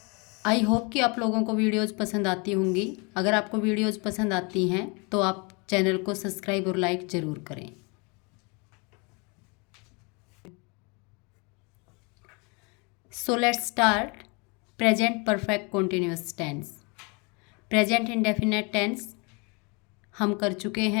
I hope कि आप लोगों को videos पसंद आती होंगी। अगर आपको वीडियोज़ पसंद आती हैं तो आप चैनल को सब्सक्राइब और लाइक ज़रूर करें। So let's start present perfect continuous tense. Present indefinite tense हम कर चुके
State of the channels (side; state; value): right; quieter; 30.7 dB